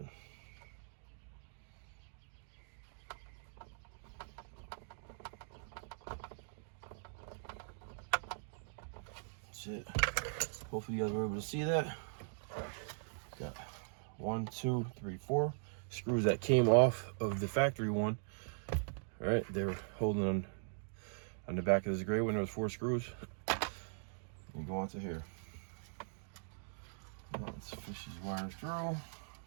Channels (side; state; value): left; silent; digital silence